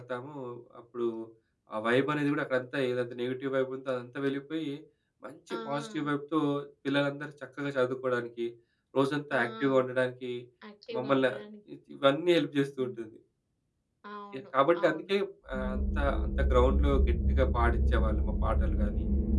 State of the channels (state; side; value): identical; both; correlation 1.00